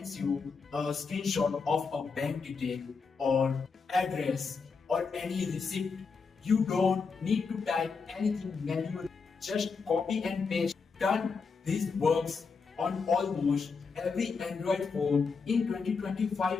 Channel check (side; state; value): right; quieter; 5.0 dB